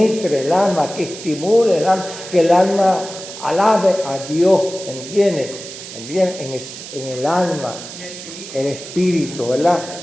el alma, que estimule el alma, que el alma alabe a Dios, ¿entiende? En el alma, el espíritu, ¿verdad?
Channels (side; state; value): right; noise; hiss, 12 dB below the sound